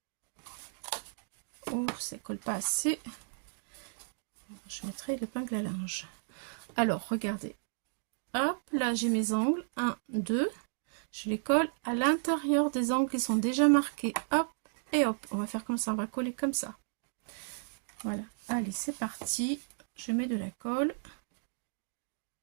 Oh, ça ne colle pas assez. Je mettrai l'épingle à linge. Alors, regardez. Hop, là, j'ai mes angles. 1, 2. Je les colle à l'intérieur des angles qui sont déjà marqués. Hop, et hop. On va faire comme ça. On va coller comme ça. Voilà. Allez, c'est parti. Je mets de la colle.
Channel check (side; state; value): left; silent; digital silence